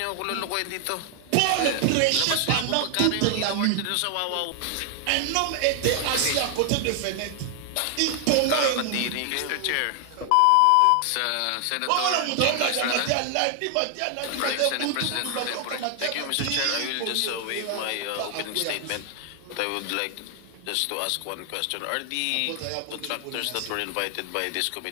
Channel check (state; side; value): different; both; correlation 0.00